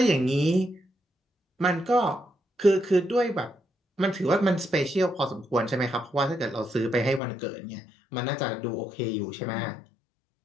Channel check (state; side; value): drops out; right; at 7.2 s